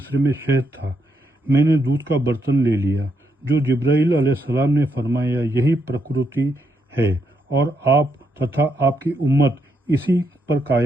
میں شہد تھا۔ میں نے دودھ کا برتن لے لیا جو جبرائیل علیہ السلام نے فرمایا یہی پرکرتی ہے اور آپ تتھا آپ کی امت اسی پر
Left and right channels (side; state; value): both; normal; correlation 0.78